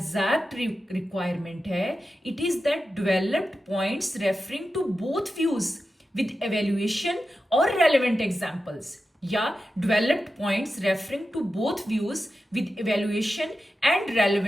रिक्वायरमेंट है, it is that developed points referring to both views with evaluation और रेलेवेंट एग्जाम्पल्स, या developed points referring to both views with evaluation and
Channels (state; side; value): normal; both; correlation 0.91